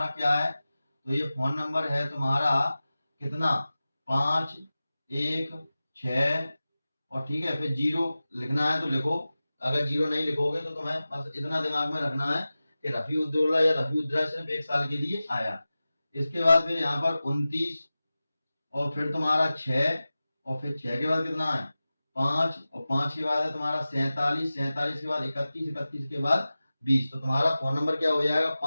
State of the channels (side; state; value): both; inverted; correlation -0.96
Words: क्या है, तो ये फोन नंबर है तुम्हारा कितना, 516, और ठीक है, फिर 0 लिखना है तो लिखो, अगर 0 नहीं लिखोगे तो तुम्हें बस इतना दिमाग में रखना है कि रफी उद्दौला या रफी उद्दौला सिर्फ 1 साल के लिए आया। इसके बाद फिर यहाँ पर 29, और फिर तुम्हारा 6, और फिर 6 के बाद कितना है 5, और 5 के बाद है तुम्हारा 47, 47 के बाद 31, 31 के बाद 20। तो तुम्हारा फोन नंबर क्या हो जाएगा,